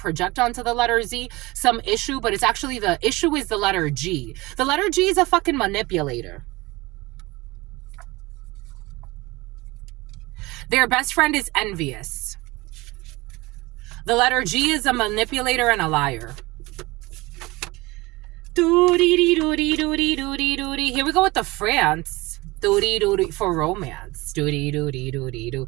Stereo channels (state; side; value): quieter; left; 22.0 dB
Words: onto the letter Z some issue, but it's actually the issue is the letter G. The letter G is a fucking manipulator. Their best friend is envious. The letter G is a manipulator and a liar. Doo-dee-dee-doo-dee-doo-dee-doo-dee-doo-dee. Here we go with the France. Doo-dee-doo-dee for romance. Doo-dee-doo-dee-doo-dee-doo.